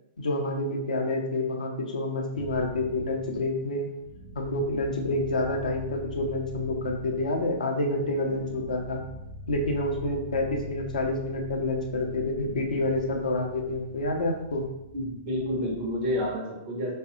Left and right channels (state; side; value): inverted; both; correlation -0.39